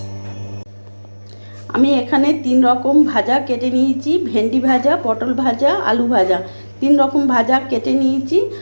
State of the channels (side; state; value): both; inverted; correlation -1.00